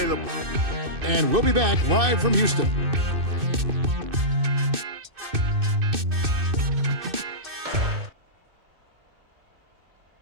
And we'll be back live from Houston.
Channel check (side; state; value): left; late; 2.6 ms